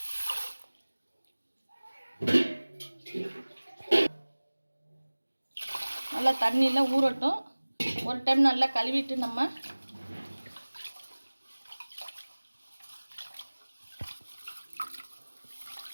நல்லா தண்ணியில் ஊறட்டும். ஒரு டைம் நல்லா கழுவிட்டு நம்ம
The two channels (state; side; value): inverted; both; correlation -1.00